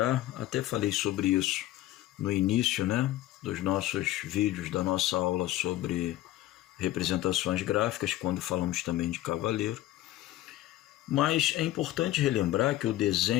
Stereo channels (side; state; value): right; quieter; 15.1 dB